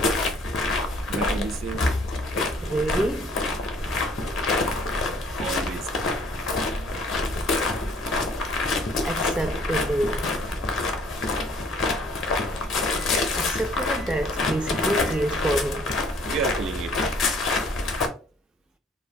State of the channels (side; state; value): both; normal; correlation 0.59